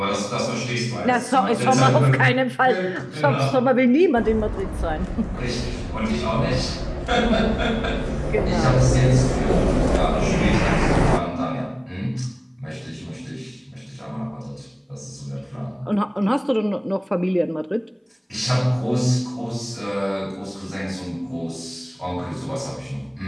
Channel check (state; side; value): identical; both; correlation 1.00